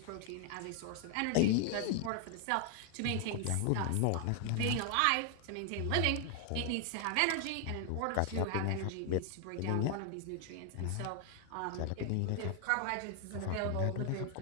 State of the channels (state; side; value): different; both; correlation 0.00